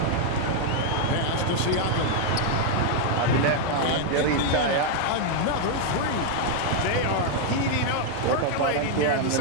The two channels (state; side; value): different; both; correlation 0.00